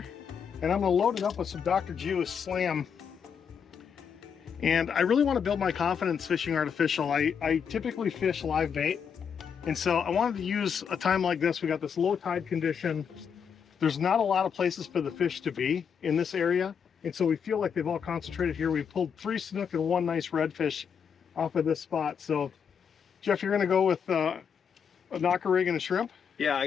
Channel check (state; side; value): quieter; right; 7.0 dB